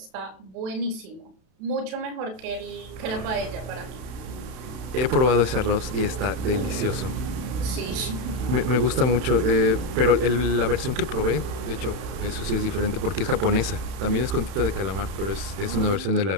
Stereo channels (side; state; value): left; late; 32 ms